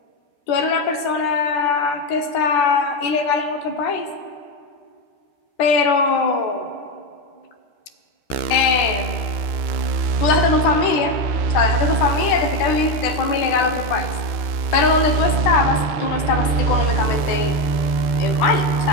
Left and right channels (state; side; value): late; right; 13 ms